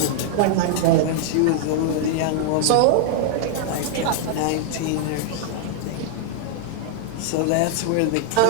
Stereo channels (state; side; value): different; both; correlation -0.01